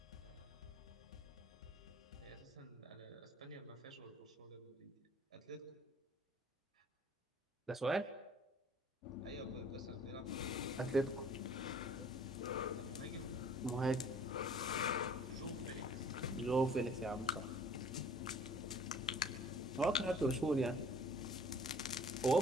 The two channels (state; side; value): normal; both; correlation 0.53